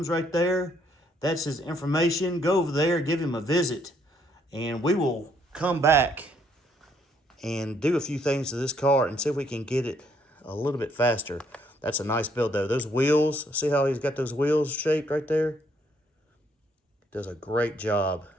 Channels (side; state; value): both; normal; correlation 0.69